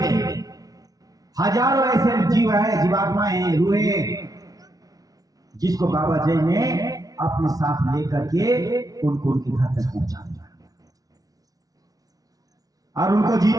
हजारों ऐसे जीव है, जीवात्माएं हैं, रूहें, जिसको बाबा जी ने अपने साथ लेकर के उनको उनके घर तक पहुंचा दिया और उनको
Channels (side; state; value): left; late; 0.18 ms